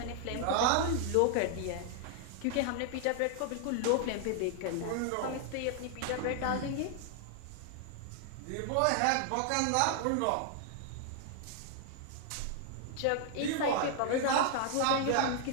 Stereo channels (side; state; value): both; different; correlation 0.00